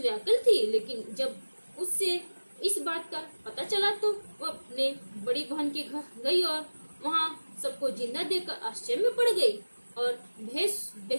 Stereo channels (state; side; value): inverted; both; correlation -1.00